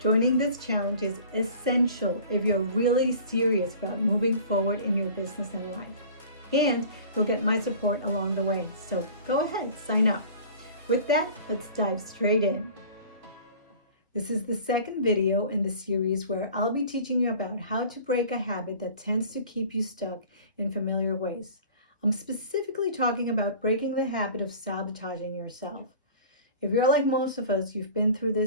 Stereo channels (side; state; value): both; inverted; correlation -0.43